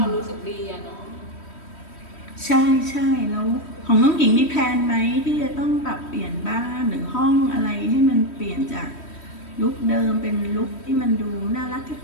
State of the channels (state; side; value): late; right; 3.1 ms